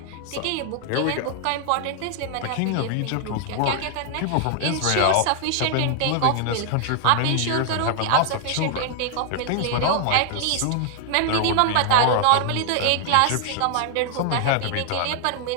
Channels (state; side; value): different; both; correlation 0.00